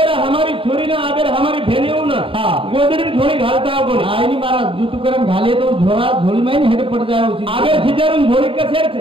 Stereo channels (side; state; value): left; late; 0.26 ms